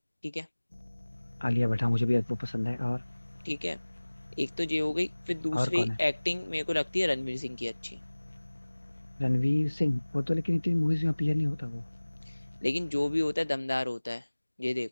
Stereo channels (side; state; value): both; inverted; correlation -1.00